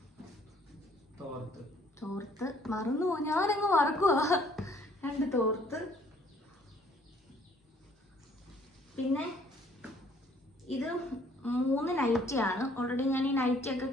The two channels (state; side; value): normal; both; correlation 0.61